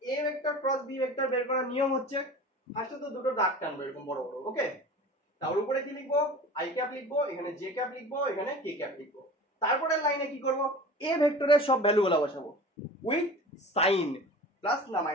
a vector cross b vector বের করার নিয়ম হচ্ছে ফার্স্টে তো দুটো দাগ টানবো এরকম বড় বড়, ওকে, তার উপরে কি লিখবো i ক্যাপ লিখবো, এখানে j ক্যাপ লিখবো, এখানে k ক্যাপ লিখবো। তারপরে লাইনে কি করব, a ভেক্টরের সব ভ্যালুগুলো বসাবো উইথ সাইন, প্লাস না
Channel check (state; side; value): normal; both; correlation 0.38